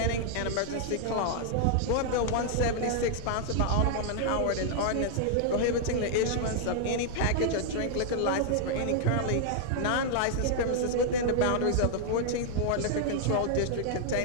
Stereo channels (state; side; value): different; both; correlation -0.01